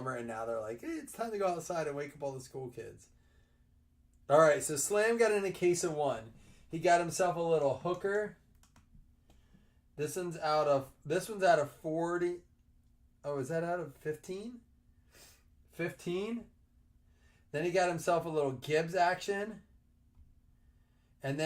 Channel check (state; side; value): identical; both; correlation 1.00